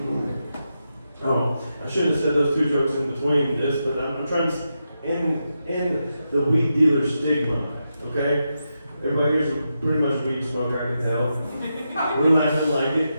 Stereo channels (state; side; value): inverted; both; correlation -0.87